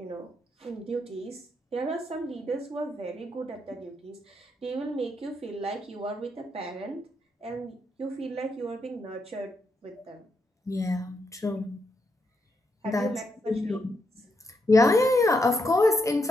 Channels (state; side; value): normal; both; correlation 0.80